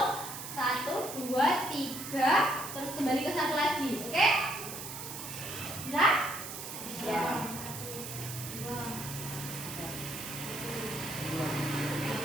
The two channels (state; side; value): noise; right; hiss, 8 dB below the sound